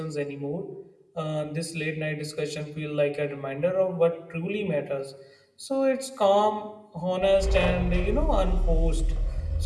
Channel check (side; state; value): both; identical; correlation 1.00